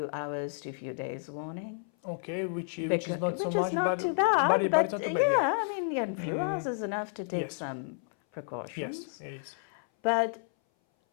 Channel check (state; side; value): silent; right; 57 dB below the other